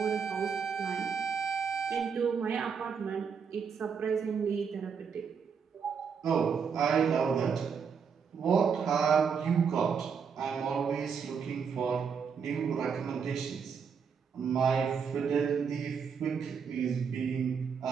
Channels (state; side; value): quieter; left; 6.4 dB